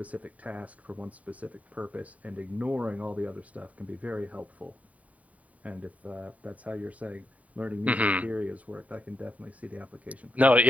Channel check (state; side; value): late; left; 0.069 ms